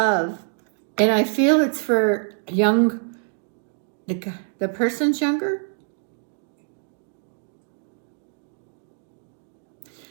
and I feel it's for the person's younger.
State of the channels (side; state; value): left; silent; digital silence